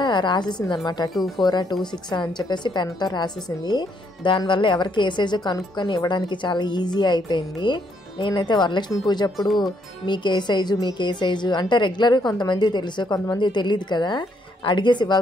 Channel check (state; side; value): normal; both; correlation 0.72